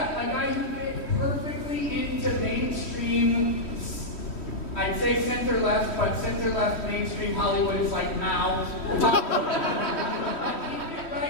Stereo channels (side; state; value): right; late; 3.1 ms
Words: a guy who fit perfectly into mainstream, I'd say center-left, but center-left mainstream Hollywood is like now. He fit